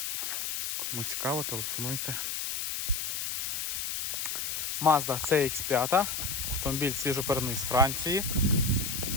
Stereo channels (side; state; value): left; noise; hiss, 2 dB below the sound